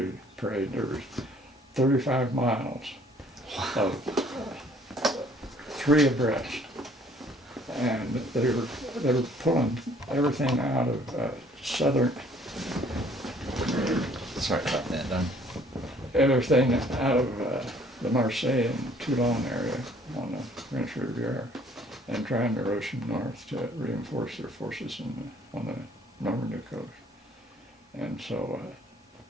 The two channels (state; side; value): normal; both; correlation 0.59